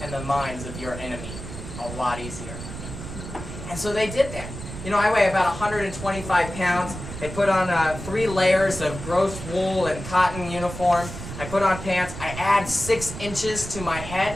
and the minds of your enemy a lot easier. And so they did that. You know, I weigh about 125 pounds. They put on 3 layers of gross wool and cotton uniform. I put on pants. I add 6 inches to my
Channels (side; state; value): right; noise; rumble, 10 dB below the sound